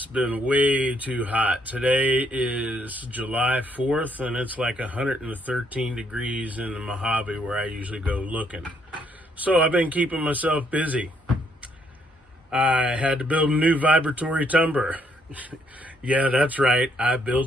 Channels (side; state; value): both; normal; correlation 0.71